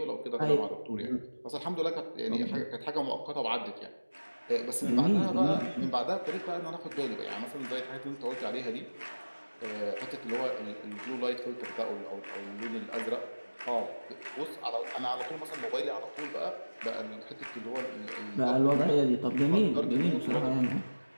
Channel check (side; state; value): both; inverted; correlation -1.00